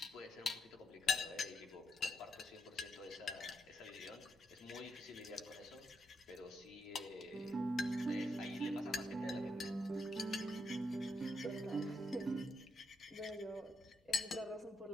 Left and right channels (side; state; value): both; normal; correlation 0.80